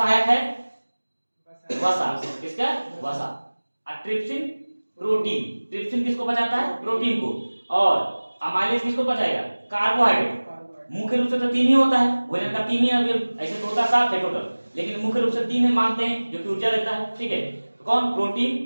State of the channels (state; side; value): inverted; both; correlation -1.00